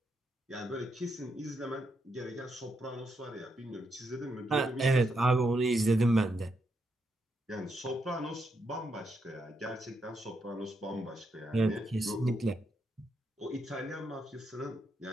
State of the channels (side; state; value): both; normal; correlation 0.80